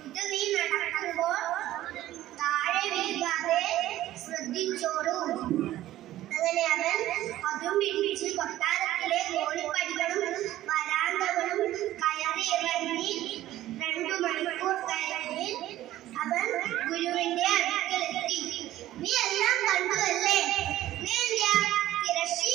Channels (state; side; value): quieter; left; 14.3 dB